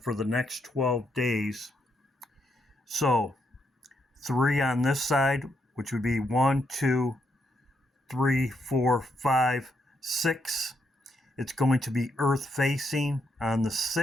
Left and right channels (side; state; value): both; normal; correlation 0.78